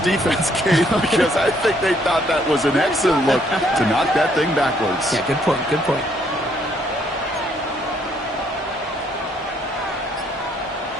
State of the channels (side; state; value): both; normal; correlation 0.68